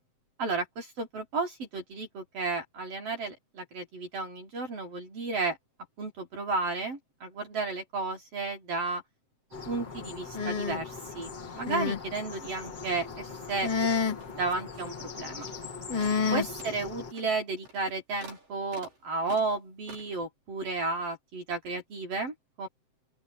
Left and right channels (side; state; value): left; late; 7.7 ms